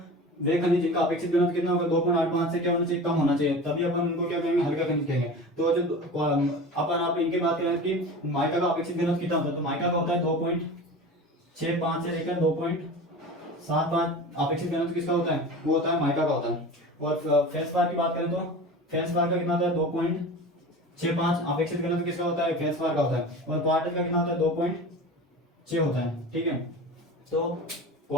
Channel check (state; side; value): normal; both; correlation 0.34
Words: वे खनिज जिनका अपेक्षित घनत्व कितना होगा 2.85 से क्या होना चाहिए कम होना चाहिए, तभी अपन उनको क्या कहेंगे हल्का खनिज कहेंगे। तो जो अपन आप इनके बात करें कि माइका का अपेक्षित घनत्व कितना होता है, तो माइका का होता है 2.65 से लेकर 2.75 अपेक्षित घनत्व किसका होता है वो होता है माइका का होता है। और फेल्सपार की बात करें तो फेल्सपार का कितना होता है 2.65 अपेक्षित घनत्व किसका होता है फेल्सपार का होता है। और क्वार्टर का कितना होता है 2.6 होता है। ठीक है, तो